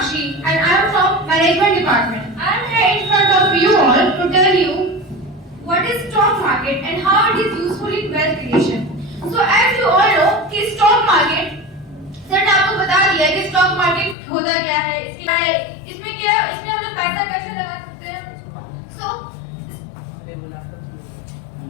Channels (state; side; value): drops out; right; at 14.2 s